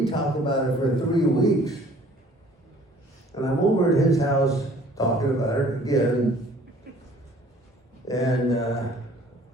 talked about it for 3 weeks. And I'm over at his house talking about it again, and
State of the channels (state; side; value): normal; both; correlation 0.54